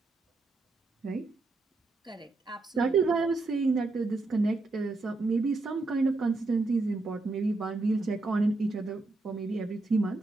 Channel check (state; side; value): quieter; left; 3.3 dB